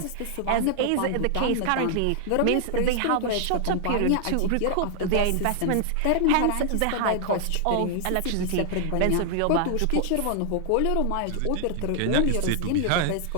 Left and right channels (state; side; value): different; both; correlation 0.00